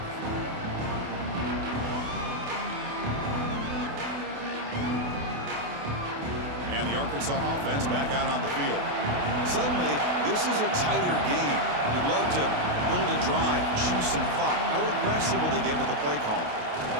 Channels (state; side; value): late; left; 28 ms